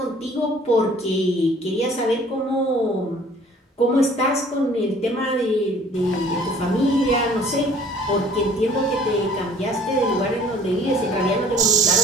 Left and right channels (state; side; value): normal; both; correlation 0.52